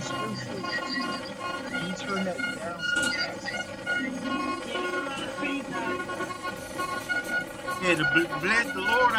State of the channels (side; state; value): both; identical; correlation 1.00